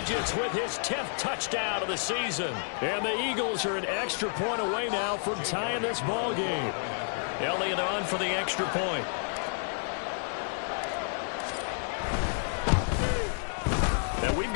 with his 10th touchdown of the season. And the Eagles are an extra point away now from tying this ball game. Elliott on for the extra point. And we've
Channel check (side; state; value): right; silent; digital silence